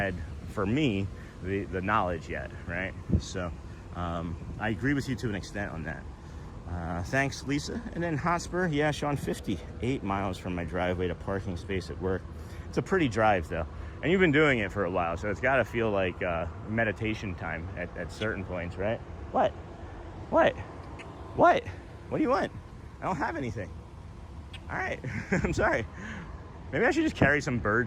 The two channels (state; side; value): identical; both; correlation 1.00